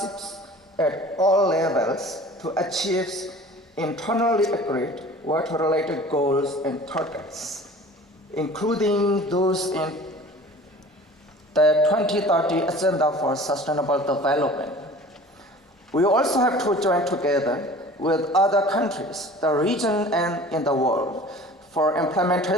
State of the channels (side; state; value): both; normal; correlation 0.44